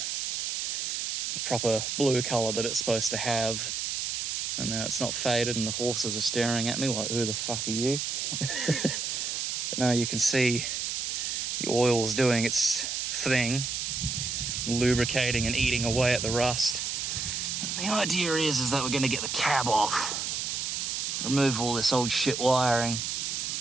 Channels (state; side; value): noise; right; hiss, 2 dB below the sound